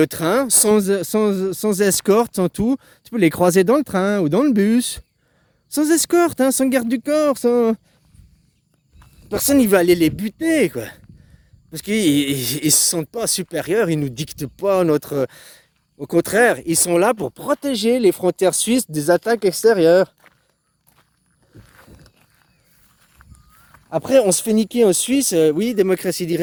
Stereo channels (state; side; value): identical; both; correlation 1.00